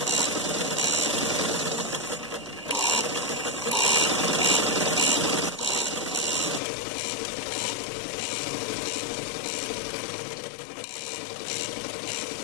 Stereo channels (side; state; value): right; drops out; at 6.6 s